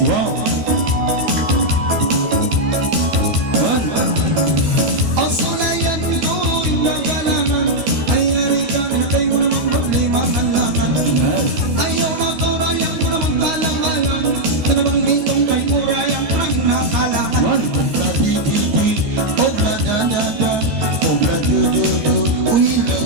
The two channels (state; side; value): late; left; 13 ms